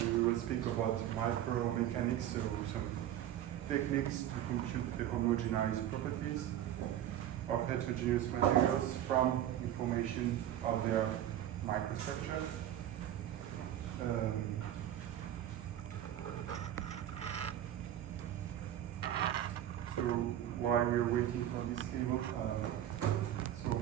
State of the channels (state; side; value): quieter; left; 11.7 dB